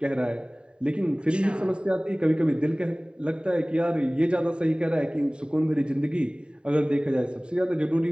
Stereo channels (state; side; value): late; left; 0.051 ms